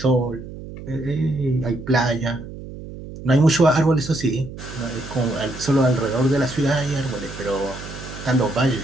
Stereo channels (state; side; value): noise; right; hum, 12 dB below the sound